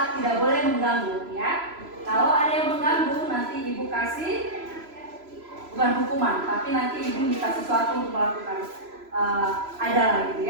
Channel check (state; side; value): late; left; 3.0 ms